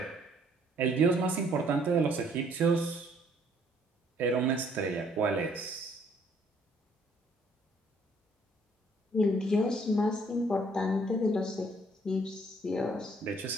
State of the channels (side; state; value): both; normal; correlation 0.63